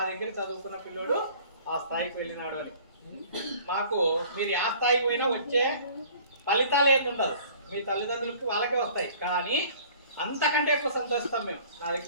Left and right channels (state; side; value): inverted; both; correlation -0.49